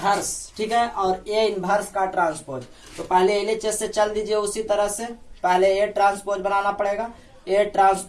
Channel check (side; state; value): both; identical; correlation 1.00